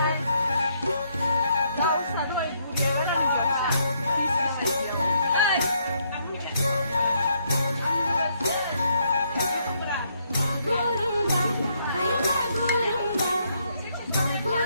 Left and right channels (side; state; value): both; inverted; correlation -0.72